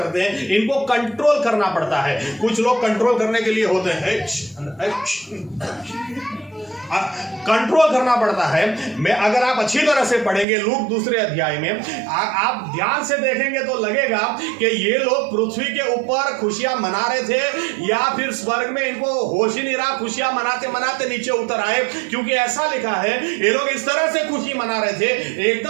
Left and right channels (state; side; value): drops out; left; at 10.5 s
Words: हैं, इनको कंट्रोल करना पड़ता है। कुछ लोग कंट्रोल करने के लिए होते हैं, कंट्रोल करना पड़ता है। मैं अगर आप अच्छी तरह से पढ़ेंगे लूक 2 अध्याय में, आप ध्यान से देखेंगे तो लगेगा कि ये लोग पृथ्वी के ऊपर खुशियां मना रहे थे, या फिर स्वर्ग में इनको होश ही नहीं रहा, खुशियां मनाते मनाते नीचे उतर आए। क्योंकि ऐसा लिखा है ये लोग इस तरह से खुशी मना रहे थे,